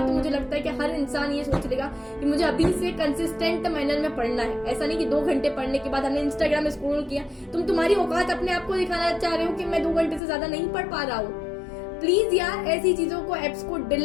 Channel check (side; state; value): right; drops out; at 10.2 s